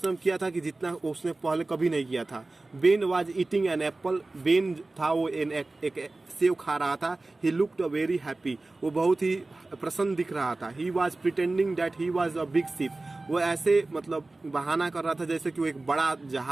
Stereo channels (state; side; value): quieter; left; 3.1 dB